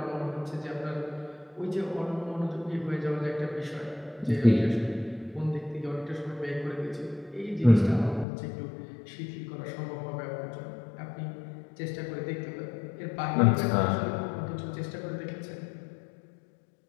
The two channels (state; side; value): drops out; right; at 8.2 s